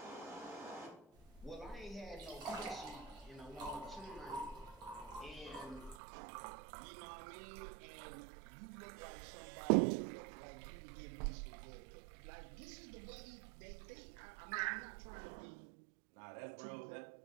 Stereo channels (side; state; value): left; drops out; at 6.0 s